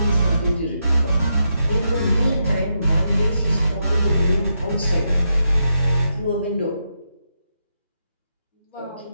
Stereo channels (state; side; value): inverted; both; correlation -0.83